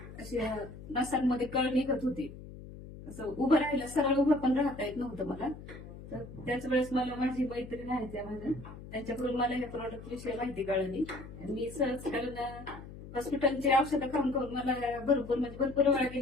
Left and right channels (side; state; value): left; noise; hum, 14 dB below the sound